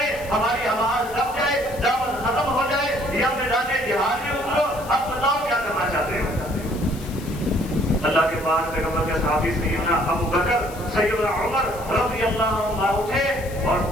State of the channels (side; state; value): left; noise; hiss, 18 dB below the sound